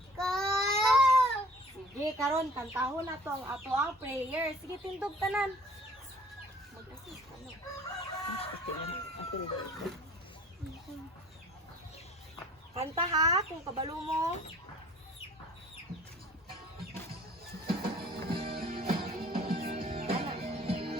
Sige, karon kantahon na to ang ato ang prayer. Sige, tindog tanan. Mag-assist ka na. Kanta ha, kung kabalo mo.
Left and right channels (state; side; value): normal; both; correlation 0.52